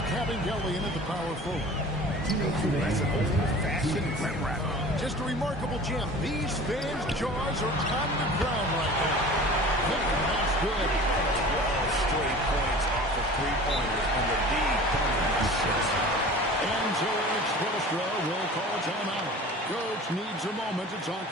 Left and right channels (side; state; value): both; normal; correlation 0.41